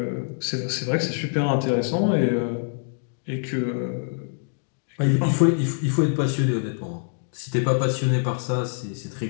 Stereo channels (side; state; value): right; silent; digital silence